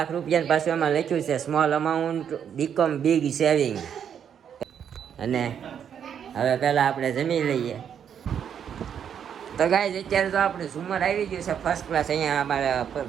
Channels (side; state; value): left; quieter; 8.4 dB